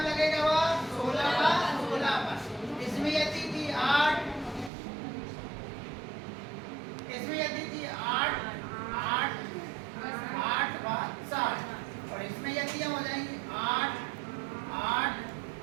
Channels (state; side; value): drops out; left; at 4.7 s